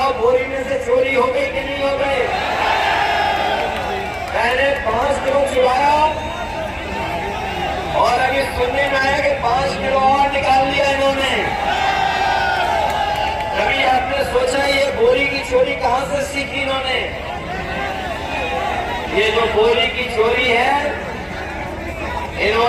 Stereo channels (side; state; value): both; identical; correlation 1.00